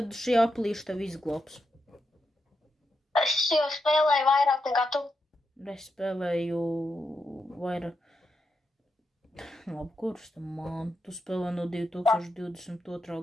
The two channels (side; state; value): both; normal; correlation 0.85